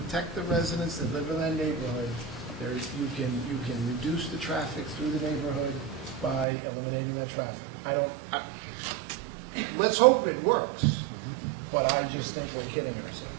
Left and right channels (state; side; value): drops out; left; at 6.5 s